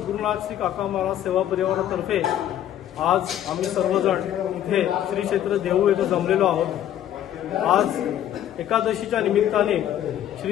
श्री काका महाराज सेवा परिवारातर्फे आज आम्ही सर्वजण इथे श्री क्षेत्र देहू येथे जमलेलो आहोत। आज एकादशीच्या निमित्ताने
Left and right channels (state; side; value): quieter; right; 11.3 dB